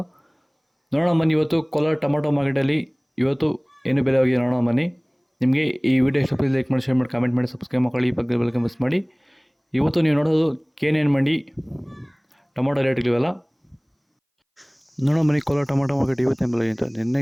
ನೋಡೋಣ ಬನ್ನಿ, ಇವತ್ತು ಕೋಲಾರ ಟೊಮಾಟೊ ಮಾರ್ಕೆಟಲ್ಲಿ ಇವತ್ತು ಏನು ಬೆಲೆ ಹೋಗಿದೆ ನೋಡೋಣ ಬನ್ನಿ. ನಿಮಗೆ ಈ ವಿಡಿಯೋ ಇಷ್ಟ ಪ್ಲೀಸ್ ಲೈಕ್ ಮಾಡಿ, ಶೇರ್ ಮಾಡಿ, ಕಾಮೆಂಟ್ ಮಾಡಿ, ಸಬ್ಸ್ಕ್ರೈಬ್ ಮಾಡಿ, ಪಕ್ಕದ ಬೆಲ್ ಮಿಸ್ ಮಾಡಿ. ಇವತ್ತು ನೀವು ನೋಡೋದು KNN ಮಂಡಿ ಟೊಮಾಟೊ ರೇಟ್ಗಳಿವೆಲ್ಲ ನೋಡೋಣ ಬನ್ನಿ. ಕೋಲಾರ ಟೊಮಾಟೊ ಮಾರ್ಕೆಟ್ ಇವತ್ತಿನ ಬೆಲೆಗಿಂತ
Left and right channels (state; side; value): identical; both; correlation 1.00